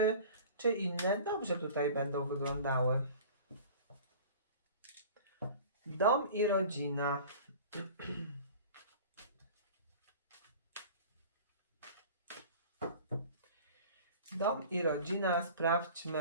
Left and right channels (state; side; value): inverted; both; correlation -0.41